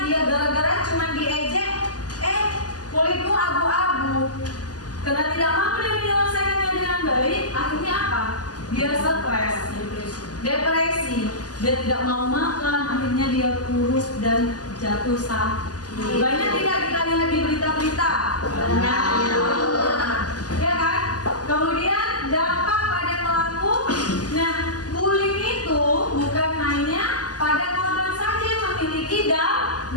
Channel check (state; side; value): late; right; 0.68 ms